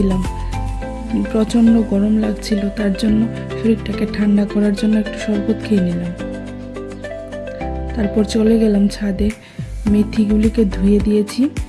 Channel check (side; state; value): both; identical; correlation 1.00